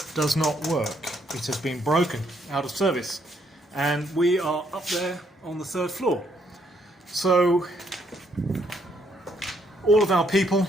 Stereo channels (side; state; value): both; normal; correlation 0.71